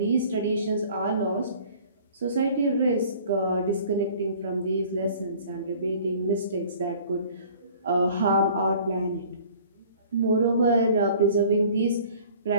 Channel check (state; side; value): inverted; both; correlation -0.50